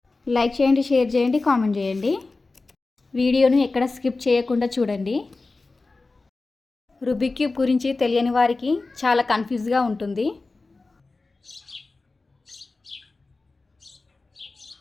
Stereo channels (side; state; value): right; quieter; 3.6 dB